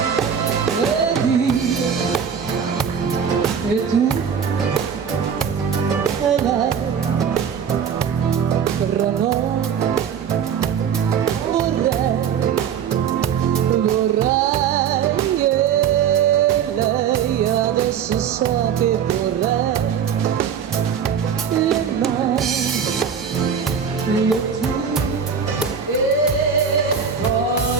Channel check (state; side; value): quieter; left; 7.4 dB